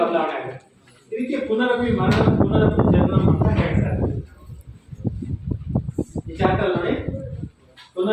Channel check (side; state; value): both; identical; correlation 1.00